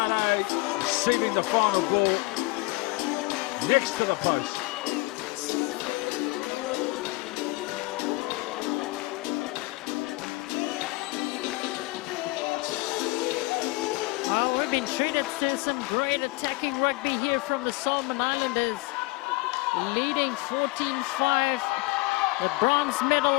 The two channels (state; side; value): quieter; right; 23.0 dB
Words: receiving the final ball next to the post. Well, we've been treated to some great attacking rugby here from the Solomon Islanders. Leading 14-5. The bronze medal